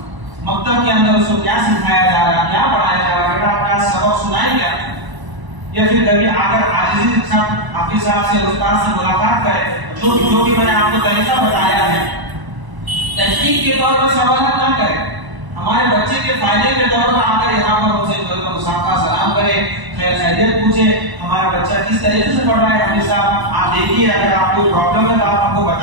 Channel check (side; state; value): left; late; 1.0 ms